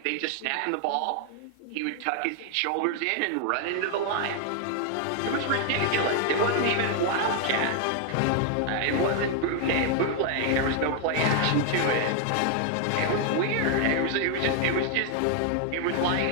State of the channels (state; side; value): different; both; correlation 0.00